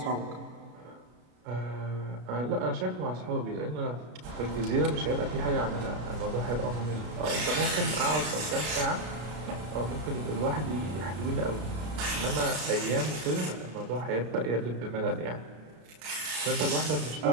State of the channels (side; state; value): left; late; 33 ms